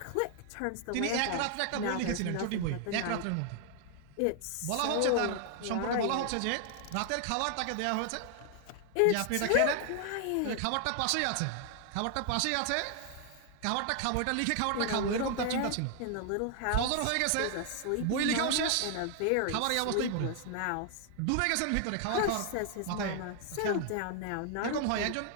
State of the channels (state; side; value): different; both; correlation 0.00